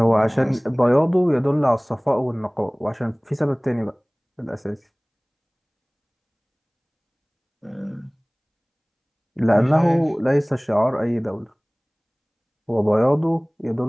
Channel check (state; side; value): identical; both; correlation 1.00